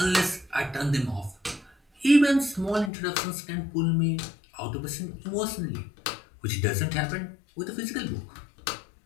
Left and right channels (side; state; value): right; drops out; at 2.9 s